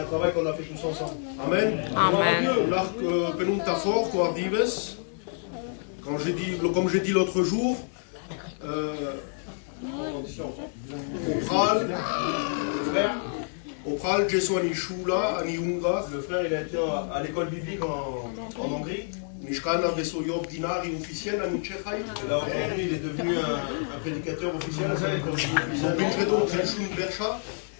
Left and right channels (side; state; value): right; silent; 59 dB below the other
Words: travail qu'on a fait tous ensemble. Amen. Amen. Comme j'ai dit l'autre jour, au Pral, le frère il a été à l'école biblique en Hongrie. Et là aujourd'hui il est devenu un prédicateur officiel.